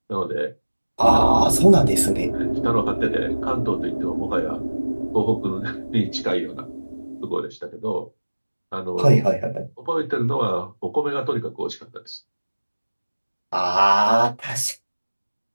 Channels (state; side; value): inverted; both; correlation -1.00